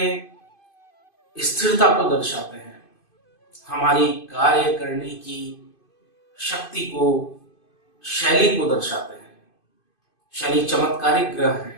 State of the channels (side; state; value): right; late; 2.5 ms